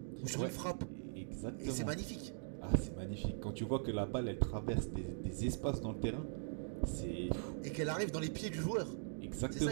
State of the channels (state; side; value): silent; left; digital silence